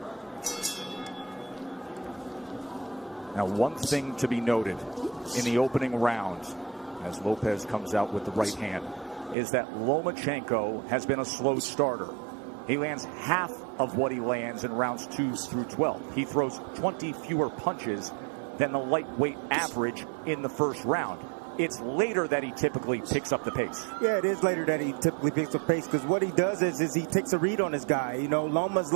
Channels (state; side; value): drops out; left; at 9.3 s